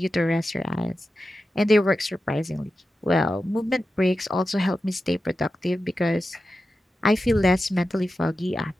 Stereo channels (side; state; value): both; normal; correlation 0.92